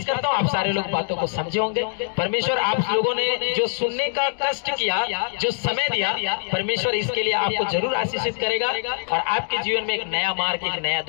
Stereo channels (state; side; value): silent; right; digital silence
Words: करता हूँ आप सारे लोग बातों को समझे होंगे। परमेश्वर आप लोगों ने जो सुनने का कष्ट किया, जो समय दिया, परमेश्वर इसके लिए आपको जरूर आशीषित करेगा और आपके जीवन में एक नया मार्ग, एक नया